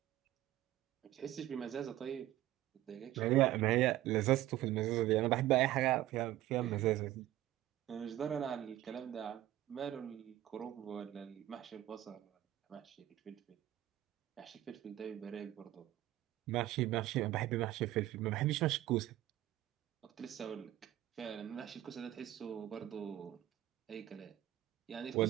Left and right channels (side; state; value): left; quieter; 14.3 dB